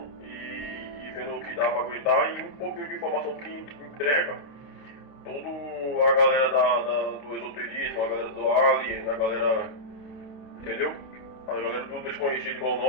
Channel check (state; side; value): late; right; 29 ms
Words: e vendo o que dá pra aguentar, e um pouquinho de informação que entrega toda a galera do esoterismo, a galera do alien, a galera, entendeu? A galera do desconhecido igual